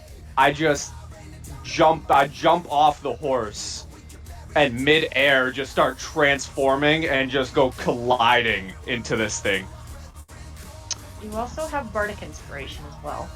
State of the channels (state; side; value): identical; both; correlation 1.00